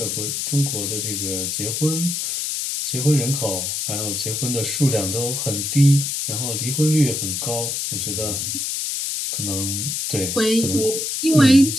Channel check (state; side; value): noise; left; hiss, 2 dB below the sound